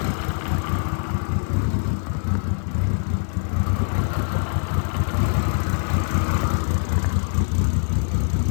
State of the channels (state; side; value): silent; right; digital silence